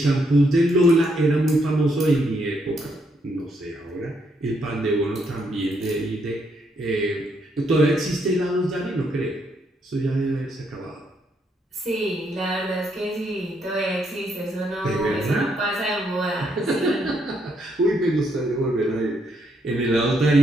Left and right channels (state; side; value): normal; both; correlation 0.75